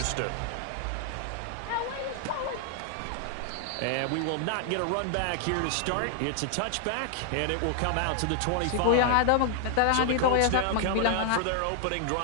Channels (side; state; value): both; different; correlation 0.00